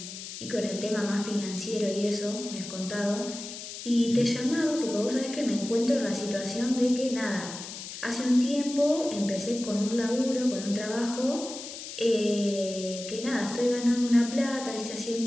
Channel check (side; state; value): left; noise; hiss, 10 dB below the sound